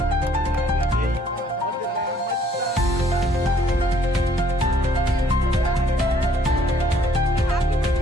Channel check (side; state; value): both; normal; correlation 0.63